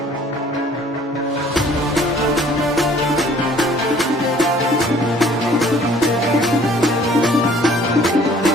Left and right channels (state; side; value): normal; both; correlation 0.55